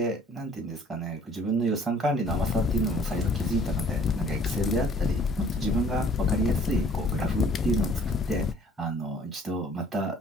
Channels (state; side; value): normal; both; correlation 0.56